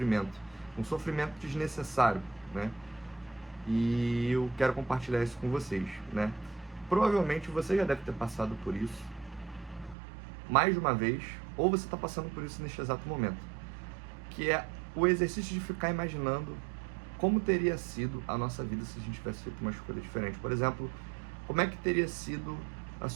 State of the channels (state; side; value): drops out; left; at 10.0 s